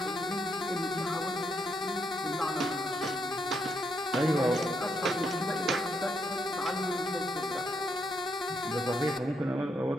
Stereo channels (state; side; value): normal; both; correlation 0.77